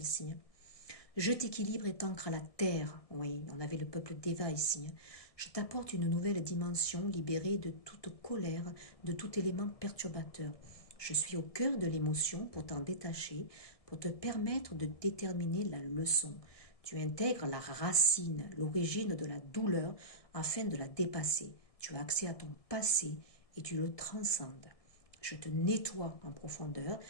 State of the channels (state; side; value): late; right; 1.7 ms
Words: Hein. Je t'équilibre et t'ancre à la terre. Oui, on avait le peuple d'Eva ici. Hein. Je t'apporte une nouvelle dimension libérée de toute colère, de tout élément perturbateur. Je suis au cœur de l'émotion pour t'en détacher, pour te permettre de déterminer la leçon. Tu intègres la racine, l'origine de la douleur afin de la dépasser. Tu as accès à ton passé et tu le transcendes. Je te nettoie en profondeur